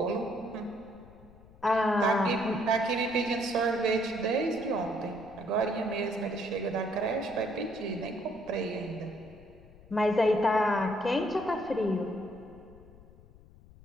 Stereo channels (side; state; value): left; noise; rumble, 23 dB below the sound